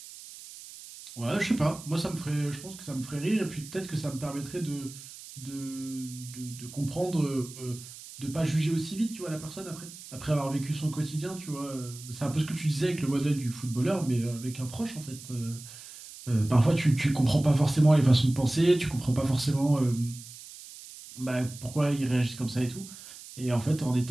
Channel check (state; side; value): noise; right; hiss, 15 dB below the sound